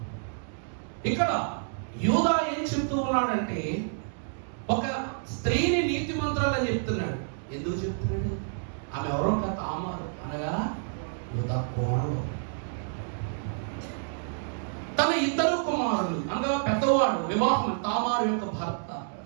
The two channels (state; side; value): silent; left; digital silence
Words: ఇక్కడ యూదా ఏం చెప్తూ ఉన్నాడంటే ఒక స్త్రీని నీతిమంతురాలని చెప్తున్నాడు. ఎందుకు చెప్తున్నాడు? ఆమె ఎవరో తామారు, అనగా యూదా కోడలు. తన ఇద్దరు కుమారులు అనగా పెద్దవాడు వివాహం, తామారు యొక్క భర్త